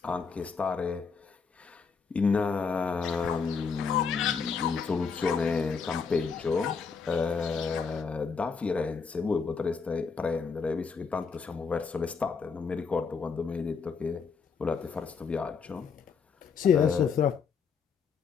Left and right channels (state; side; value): quieter; right; 5.5 dB